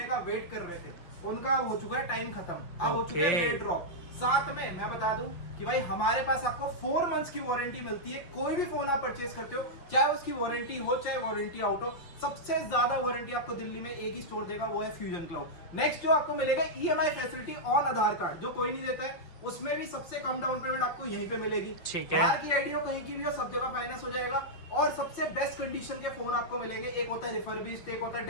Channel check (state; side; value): late; right; 5.8 ms